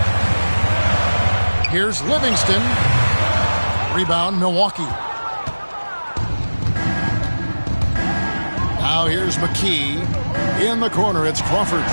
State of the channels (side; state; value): both; inverted; correlation -1.00